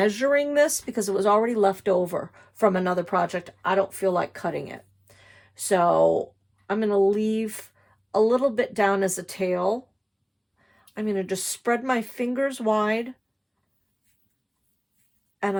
this because it was already left over from another project. I don't feel like cutting it. So I'm going to leave a little bit down as a tail. I'm going to just spread my fingers wide, and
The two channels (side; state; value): both; identical; correlation 1.00